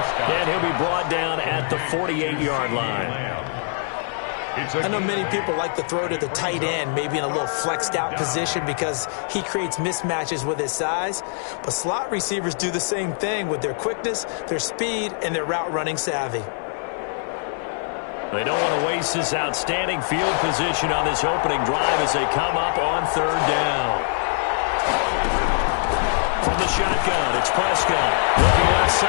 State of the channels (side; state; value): right; silent; digital silence